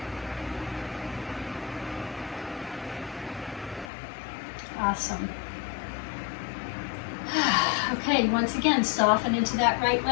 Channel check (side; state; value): right; drops out; at 3.9 s